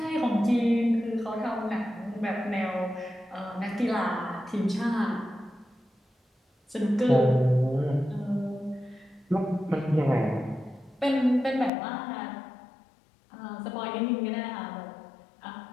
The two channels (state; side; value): drops out; right; at 11.7 s